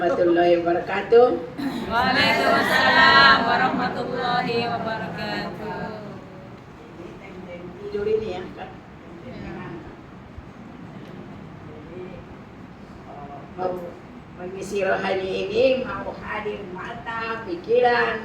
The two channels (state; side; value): identical; both; correlation 1.00